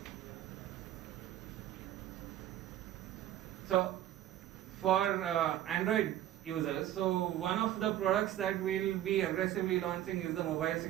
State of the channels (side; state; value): left; quieter; 12.7 dB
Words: So for Android users, so one of the products that we'll be aggressively launching is the mobile